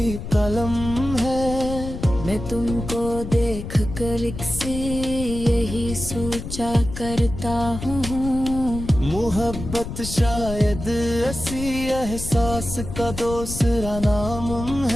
कलम है। मैं तुमको देख कर एक सी यही सोचा करता हूँ, मोहब्बत शायद ऐसी एहसास का दूसरा नाम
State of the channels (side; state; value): left; noise; rumble, 8 dB below the sound